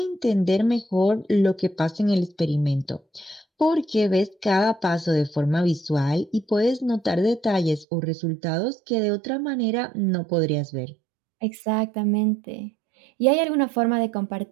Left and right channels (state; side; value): drops out; left; at 7.9 s